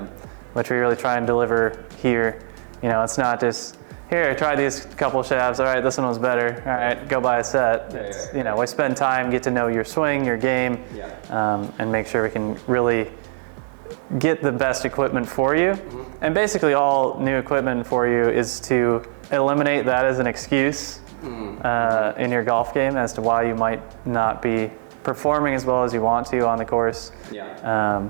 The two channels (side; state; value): left; silent; digital silence